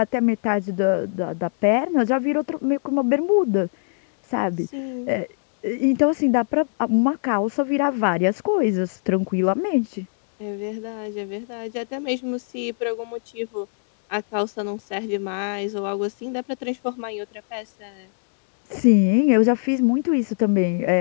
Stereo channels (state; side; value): silent; right; digital silence